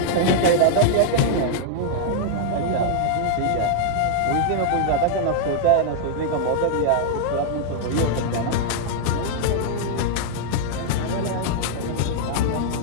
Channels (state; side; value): different; both; correlation -0.01